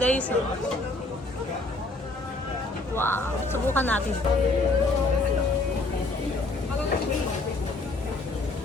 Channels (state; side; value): quieter; right; 3.1 dB